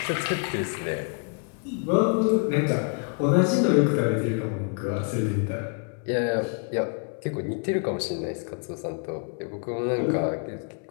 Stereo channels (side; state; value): right; quieter; 38.7 dB